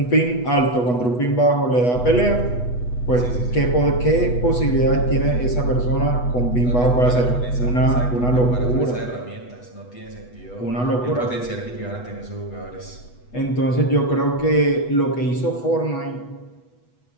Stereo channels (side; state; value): right; late; 8.1 ms